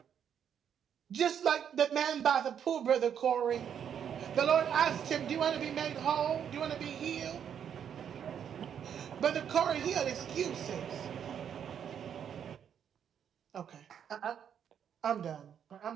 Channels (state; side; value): quieter; left; 8.5 dB